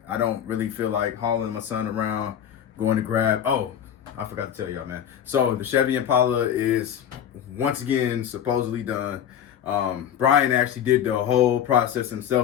don't really feel like hauling my son around, going to grab. Oh, I forgot to tell y'all, man. So the Chevy Impala is once again supposedly done. Brian actually did the whole process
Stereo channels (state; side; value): quieter; right; 9.6 dB